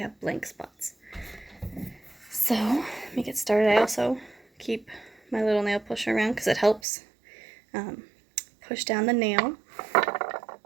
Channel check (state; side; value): drops out; left; at 6.8 s